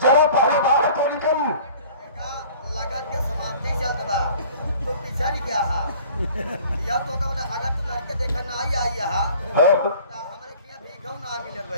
जरा पहले बाहर तो निकल। लगन के समाप्ति चलता बा तो पीछा नहीं गया हा। यह तो का मतलब अगर तू लड़के देखा ना आई हा तो हमरे किया भीखौ ना मिलल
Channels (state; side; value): inverted; both; correlation -0.48